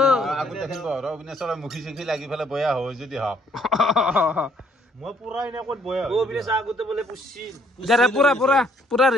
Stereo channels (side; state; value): both; normal; correlation 0.65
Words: আগত দেখিব আৰু অবিনাশৰ মুখি চুখি লাগি ফেলে বয়া হয় যদি হওক মই পুৰা এনে ক'ত বয়া ও বিলেছ আগতে বলে পুছি যাৰে পুৰা